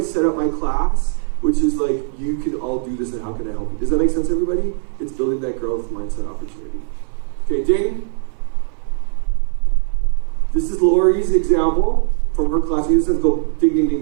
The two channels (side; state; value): left; silent; 59 dB below the other